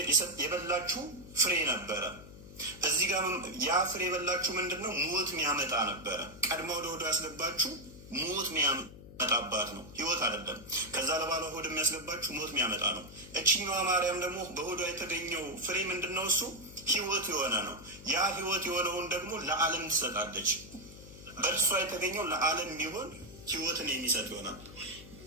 የበላችሁ ፍሬ ነበረ። እዚህ ጋር ያ ፍሬ የበላችሁ ምንድን ነው? ሞት የሚያመጣ ነበረ። ቀድማ ወደ ሆዷ ያስገባችሁ ሞት የሚያመጣባት ነው፣ ህይወት አይደለም። ከዛ ለባሏ ሆድ የሚያስገባችሁ ሞት የሚያመጣ ነው። እችኛዋ ማርያም ደግሞ በሆዷ የተገኘው ፍሬ ምንድን ነው? እሱ ህይወት የሆነ ነው። ያ ህይወት የሆነውን ደግሞ ለዓለም ትሰጣለች። በእርሷ የተገኘው ለዓለም ቢሆን ህይወትን የሚሰጥ ይሆናል።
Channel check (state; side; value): noise; left; hum, 16 dB below the sound